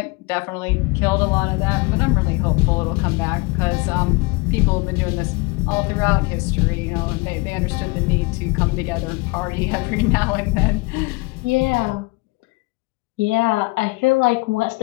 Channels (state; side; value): quieter; right; 25.3 dB